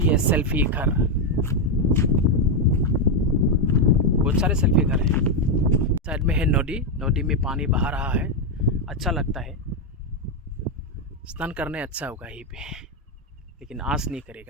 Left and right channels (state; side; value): normal; both; correlation 0.04